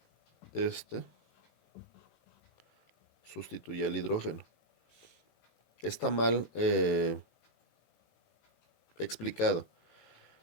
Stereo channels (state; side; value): late; right; 18 ms